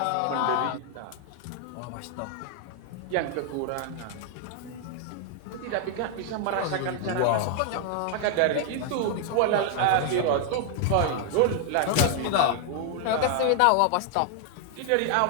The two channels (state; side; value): different; both; correlation 0.00